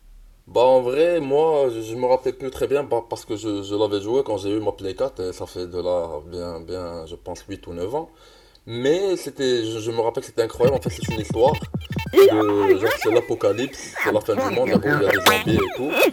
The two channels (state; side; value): identical; both; correlation 1.00